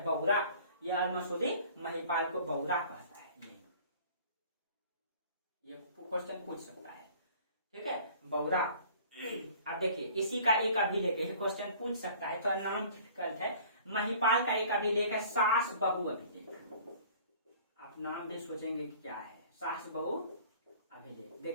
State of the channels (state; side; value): inverted; both; correlation -0.49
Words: बौरा। ये अल मसूदी महिपाल को बौरा कहता है, ये क्वेश्चन पूछ सकता है। ठीक है, बौरा। अब देखिए इसी का एक अभिलेख है, क्वेश्चन पूछ सकता है, तो नाम डिफिकल्ट है। महिपाल का एक अभिलेख है सास बहु अभिलेख। आप नाम भी सोचेंगे कि क्या है, सास बहु अभिलेख।